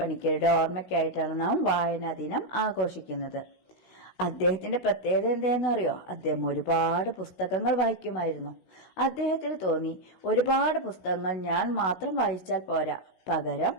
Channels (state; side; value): late; right; 16 ms